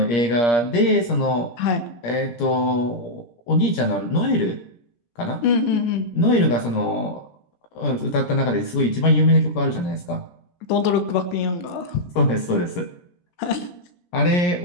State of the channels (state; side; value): late; right; 17 ms